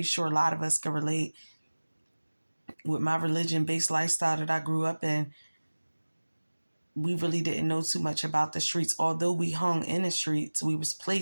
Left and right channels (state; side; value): inverted; both; correlation -1.00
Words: sure a lot of us can relate with my religion-based lifestyle that I grew up in. We really didn't know too much about the streets. Although we hung in the streets, we was